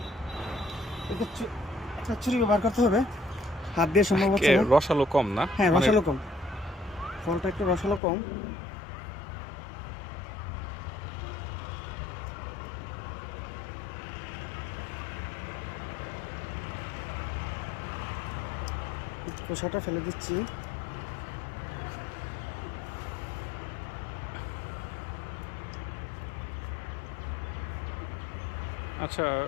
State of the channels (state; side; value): drops out; right; at 8.0 s